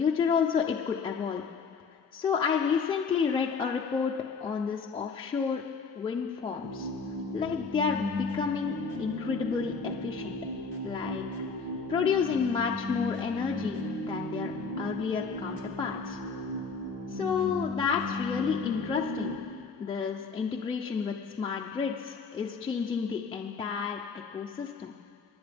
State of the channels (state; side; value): quieter; right; 5.2 dB